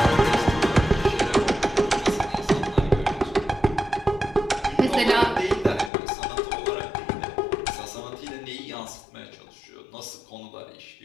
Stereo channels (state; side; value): drops out; right; at 5.9 s